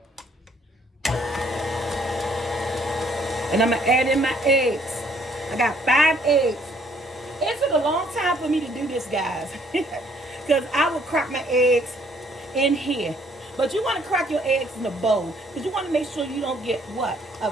And I'm going to add in my eggs. I got 5 eggs. It took a long time for me to do this, guys. Because I would crack my eggs in here. But you want to crack your eggs in a bowl. Because you want to make sure you don't get what? A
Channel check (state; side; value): normal; both; correlation 0.64